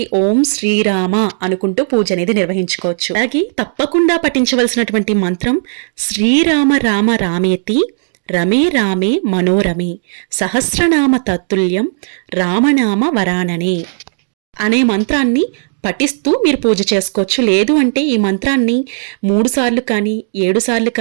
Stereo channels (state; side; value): silent; left; digital silence